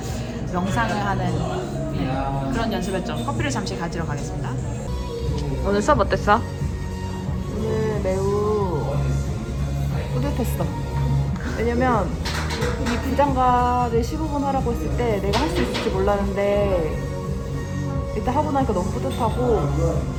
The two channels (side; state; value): both; identical; correlation 1.00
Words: 명상을 하는 그런 연습했죠. 커피를 잠시 가지러 가겠습니다. 오늘 수업 어땠어? 오늘 매우 뿌듯했어. 왜냐면 이 부장가를 15분 하라고 했을 때 내가 할 수 있을지 몰랐는데 일단 하고 나니까 너무 뿌듯하고,